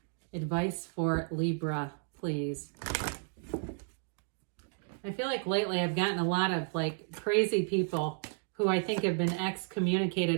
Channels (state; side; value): silent; left; 56 dB below the other